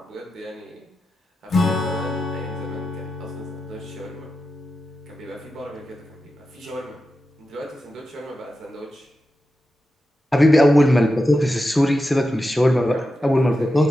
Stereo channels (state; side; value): normal; both; correlation 0.91